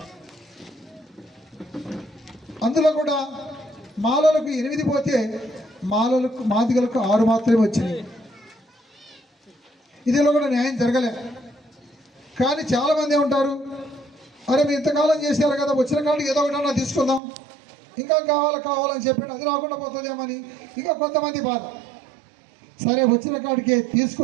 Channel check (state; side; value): drops out; left; at 17.2 s